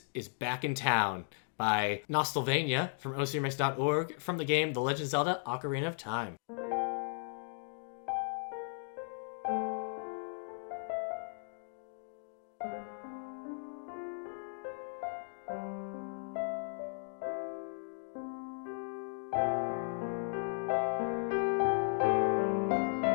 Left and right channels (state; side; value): silent; right; 54 dB below the other